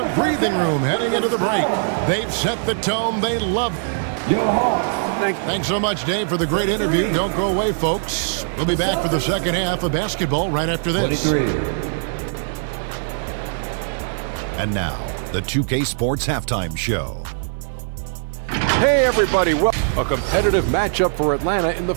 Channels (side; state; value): left; silent; digital silence